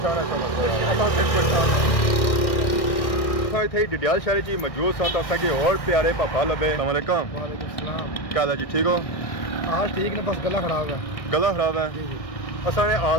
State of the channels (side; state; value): right; late; 1.6 ms